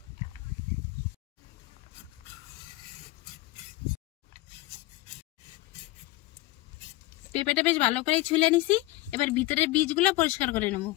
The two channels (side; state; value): right; quieter; 18.7 dB